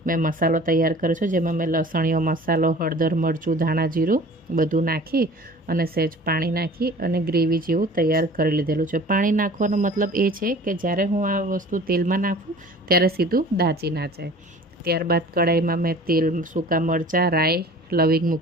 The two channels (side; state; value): both; normal; correlation 0.45